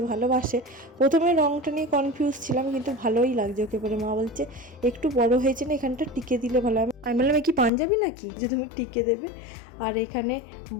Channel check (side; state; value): right; drops out; at 7.7 s